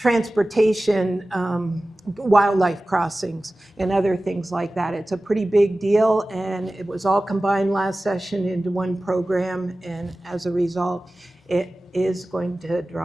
wildlife crossings, and other things like that. It's a pretty big deal, and it was all combined last session into one program, and as a result, it is going to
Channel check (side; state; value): both; normal; correlation 0.96